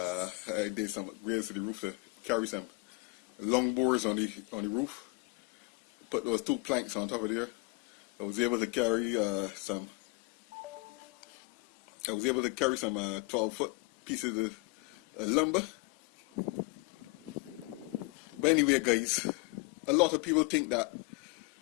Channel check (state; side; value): quieter; right; 27.0 dB